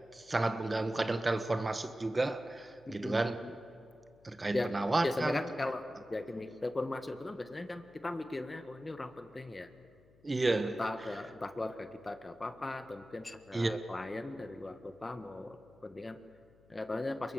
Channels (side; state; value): left; noise; hum, 28 dB below the sound